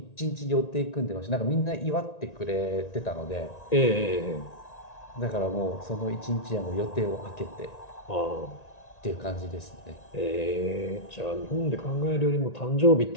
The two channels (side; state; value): right; late; 1.9 ms